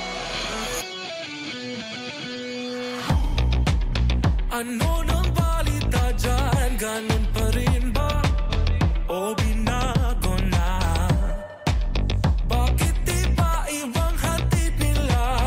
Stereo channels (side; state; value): both; identical; correlation 1.00